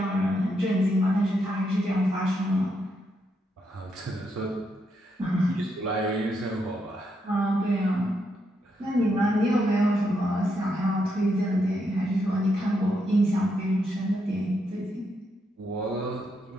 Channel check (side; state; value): both; normal; correlation 0.80